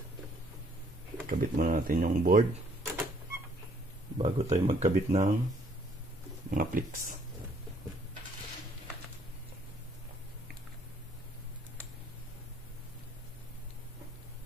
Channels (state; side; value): normal; both; correlation 0.64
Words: kabit muna natin yung board bago tayo magkabit ng mga pliks.